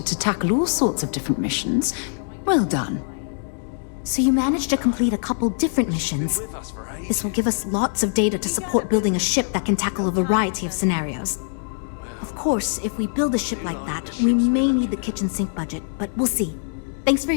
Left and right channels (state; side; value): silent; right; digital silence